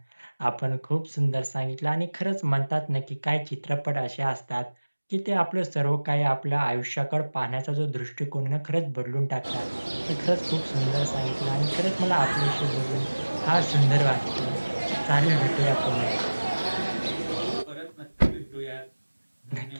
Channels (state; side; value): inverted; both; correlation -1.00